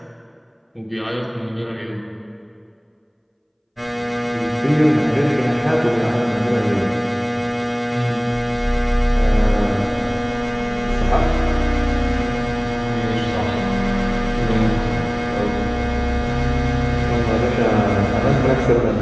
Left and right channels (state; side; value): identical; both; correlation 1.00